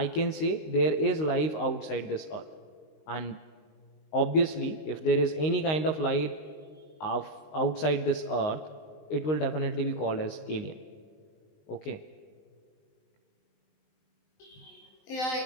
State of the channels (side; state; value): right; late; 19 ms